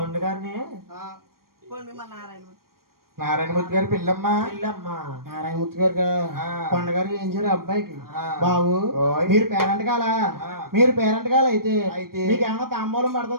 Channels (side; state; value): left; late; 0.93 ms